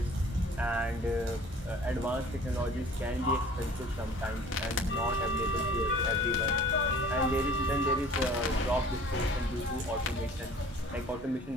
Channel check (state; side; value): normal; both; correlation 0.48